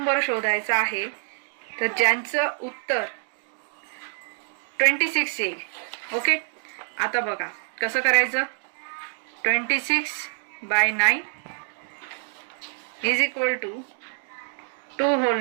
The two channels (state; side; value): silent; left; 59 dB below the other